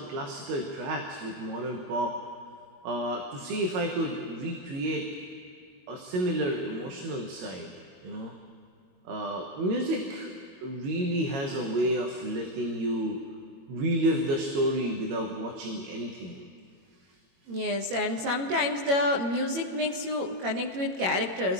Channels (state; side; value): late; left; 21 ms